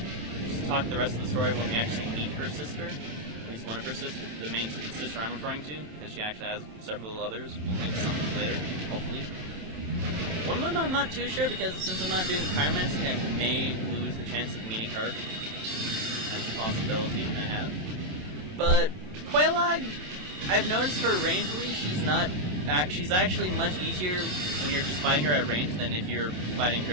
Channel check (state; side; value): late; left; 27 ms